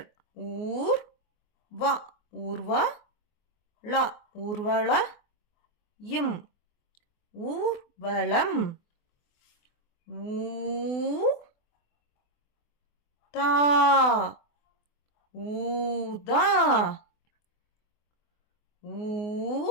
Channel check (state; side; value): late; right; 24 ms